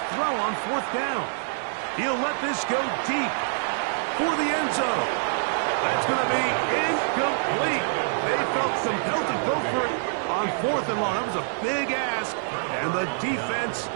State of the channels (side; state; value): left; silent; 61 dB below the other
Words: throw on 4th down. He'll let this go deep for the end zone. That's going to be incomplete. They felt compelled to go for it on 4th and long. That was a big ask, and the defense